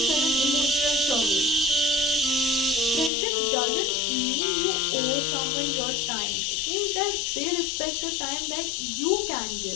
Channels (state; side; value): drops out; right; at 3.1 s